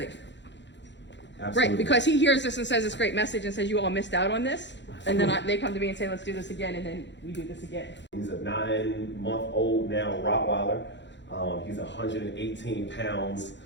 Absolutely. Right, because he hears this and says this great message and says you all missed out on this, and then they come to me and say let's do this again, and then we do this again. He's a 9-month-old now Rottweiler. He's 118 pounds.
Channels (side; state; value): right; late; 0.52 ms